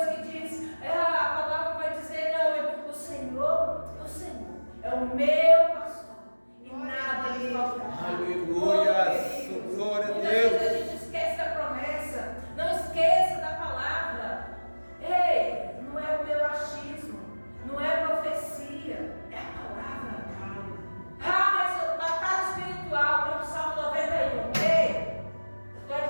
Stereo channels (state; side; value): inverted; both; correlation -1.00